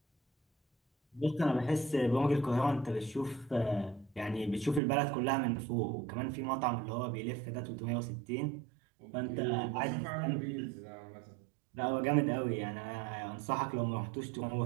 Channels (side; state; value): left; drops out; at 4.8 s